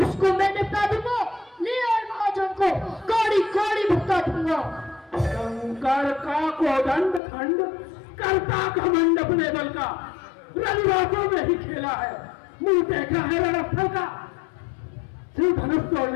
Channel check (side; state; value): right; drops out; at 7.2 s